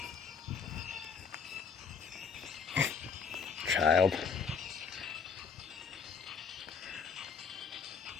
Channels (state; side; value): quieter; right; 6.0 dB